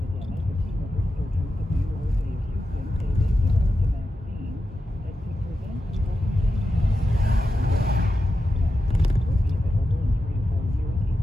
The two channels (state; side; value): normal; both; correlation 0.90